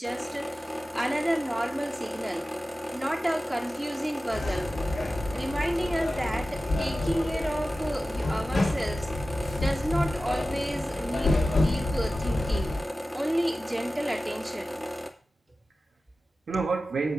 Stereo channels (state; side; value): normal; both; correlation 0.95